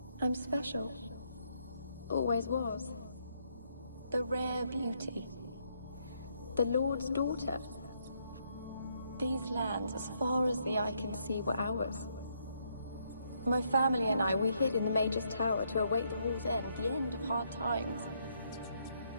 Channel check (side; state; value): both; inverted; correlation -0.74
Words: I'm special. Always was. The rare beauty. The Lord's daughter. These lands, as far as the eye can see, were ours. My family and I, we hid in the Mage's Tower to await the war's end, the end of hard times.